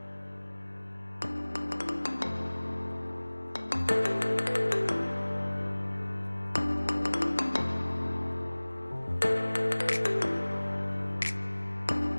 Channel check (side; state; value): both; inverted; correlation -1.00